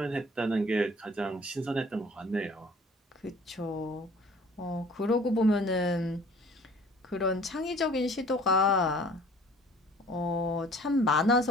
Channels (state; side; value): normal; both; correlation 0.50